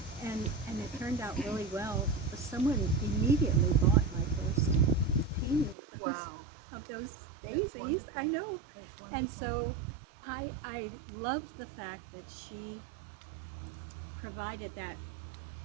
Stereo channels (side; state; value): left; drops out; at 5.8 s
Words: And it turned out really well. Someone immediately bought my first painting Wow. of those That's daisies. wonderful. I know. That's wonderful. And so I love the fact that she provided that